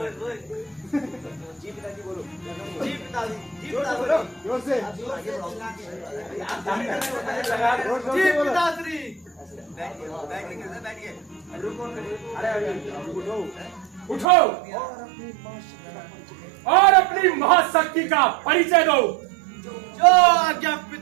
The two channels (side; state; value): left; drops out; at 14.2 s